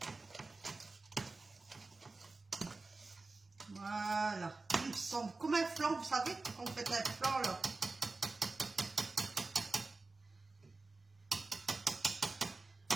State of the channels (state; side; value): quieter; left; 3.5 dB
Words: Voilà. Il semble comme un flan, vous savez, quand vous faites un flan là.